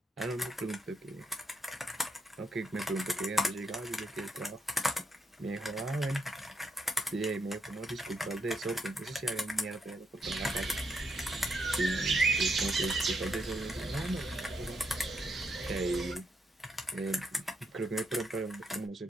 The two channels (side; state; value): both; normal; correlation 0.78